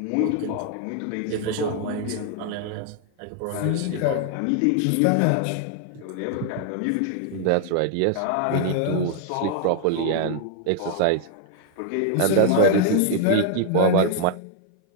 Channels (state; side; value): different; both; correlation 0.00